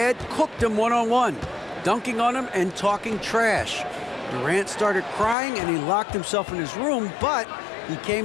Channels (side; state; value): right; drops out; at 5.4 s